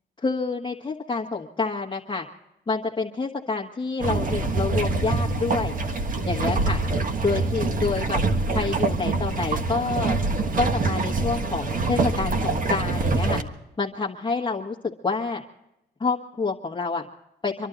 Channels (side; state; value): both; normal; correlation 0.46